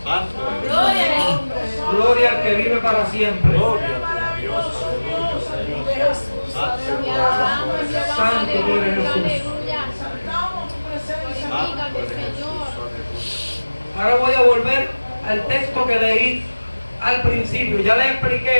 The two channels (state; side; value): inverted; both; correlation -1.00